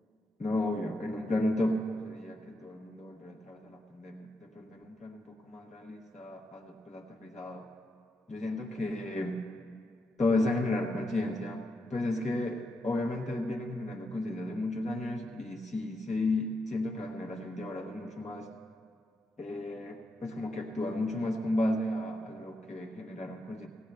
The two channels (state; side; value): normal; both; correlation 0.83